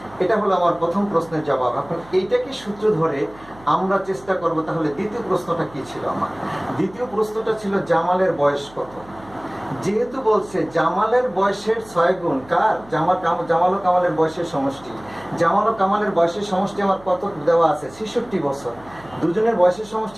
এটা হলো আমার প্রথম প্রশ্নের জবাব। এখন এইটাকে সূত্র ধরে আমরা চেষ্টা করব তাহলে দ্বিতীয় প্রশ্নটা কি ছিল আমার। দ্বিতীয় প্রশ্নটা ছিল জামালের বয়স কত। যেহেতু বলছে জামালের বয়সের 6 গুণ কার? জামাল ও কামালের বয়সের সমষ্টি। জামাল ও কামালের বয়সের সমষ্টি আমার কত দেওয়া আছে? 66 বছর। দুজনের বয়সের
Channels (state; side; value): noise; right; hum, 23 dB below the sound